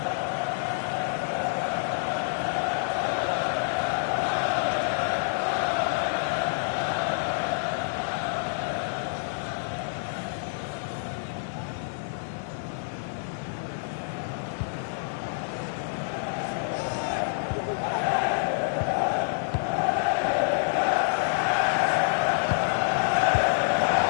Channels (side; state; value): right; silent; digital silence